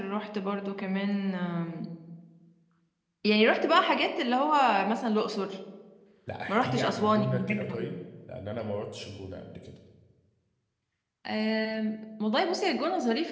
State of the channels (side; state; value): both; identical; correlation 1.00